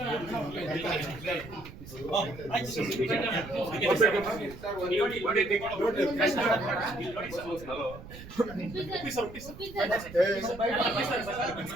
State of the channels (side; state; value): right; noise; rumble, 15 dB below the sound